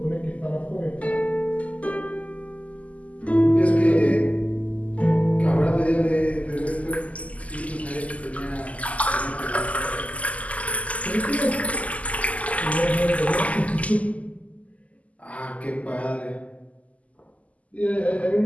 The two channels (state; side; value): late; right; 0.070 ms